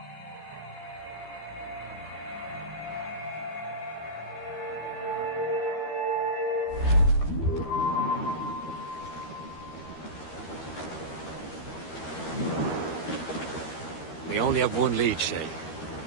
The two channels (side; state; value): right; late; 13 ms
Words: We only have one lead, Shay.